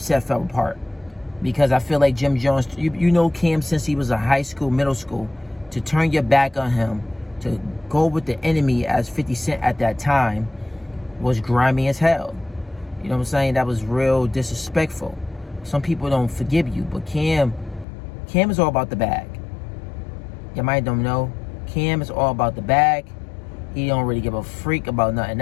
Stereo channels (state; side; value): drops out; right; at 17.9 s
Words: fell apart. Because I feel like Jim Jones, you know Cam since he was in high school, middle school, to turn your back on him, to go with the enemy as 50 Cent at that time, was grimy as hell. You know what I'm saying? That was real disrespectful. Some people don't forgive you, but Cam is all about the bag. You might don't know. Cam is all about the bag. He don't really give a freak about nothing